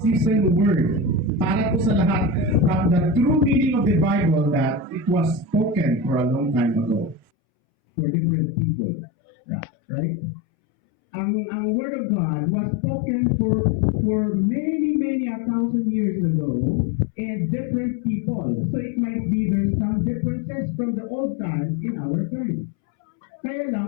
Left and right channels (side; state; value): right; drops out; at 7.2 s